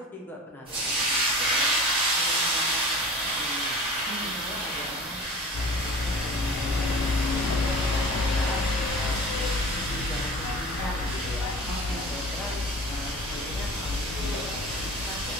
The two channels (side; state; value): both; normal; correlation 0.38